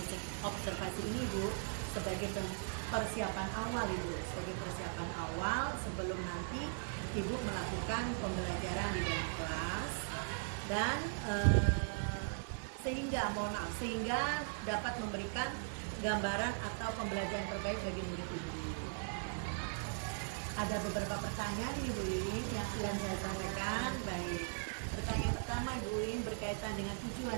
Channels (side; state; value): left; silent; 52 dB below the other